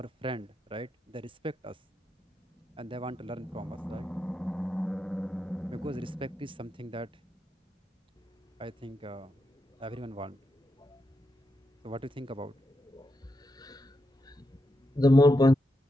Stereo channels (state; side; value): normal; both; correlation 0.85